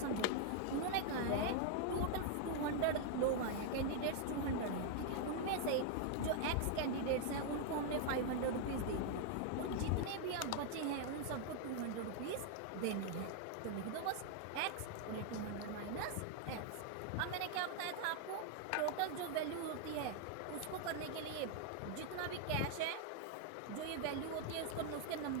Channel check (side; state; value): both; different; correlation 0.00